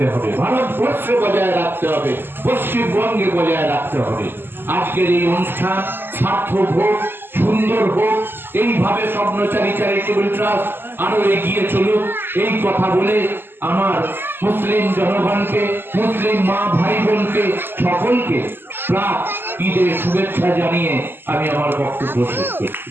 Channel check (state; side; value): late; left; 0.10 ms